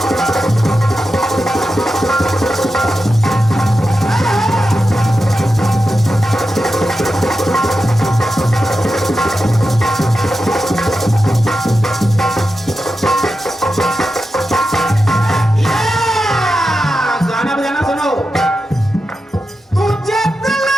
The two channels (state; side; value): normal; both; correlation 0.90